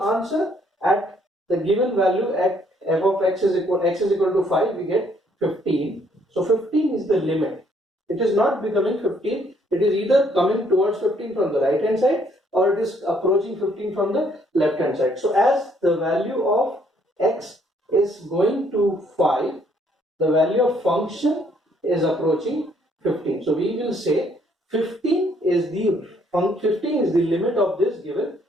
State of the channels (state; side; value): normal; both; correlation 0.67